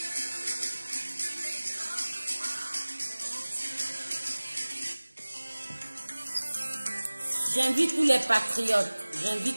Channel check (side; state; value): both; inverted; correlation -1.00